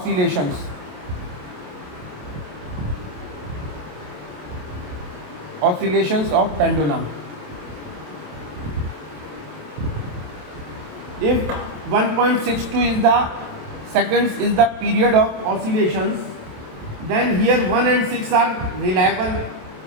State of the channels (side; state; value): left; late; 27 ms